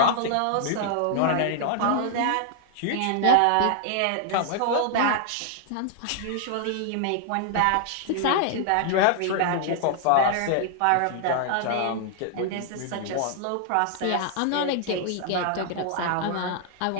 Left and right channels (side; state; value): both; different; correlation -0.01